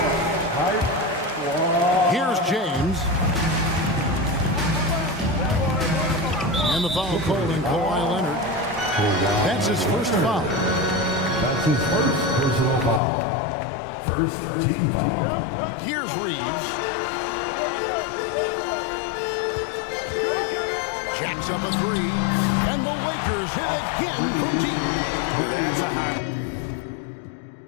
Here's James. And the foul called in Kawhi Leonard. That's his first foul. That's his first personal foul. First team foul. Here's Reeves. Jacks up a 3. And the Lakers hit again from deep. Well, that's a high.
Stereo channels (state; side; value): drops out; right; at 13.0 s